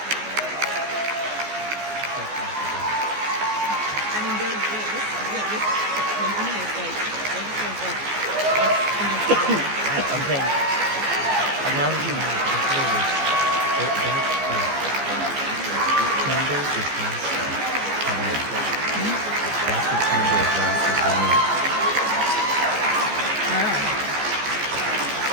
I mean, this company is like, I'm saying, I'm not really mad. Candle is lasting. That's the candle is lasting for me.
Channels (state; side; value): late; left; 14 ms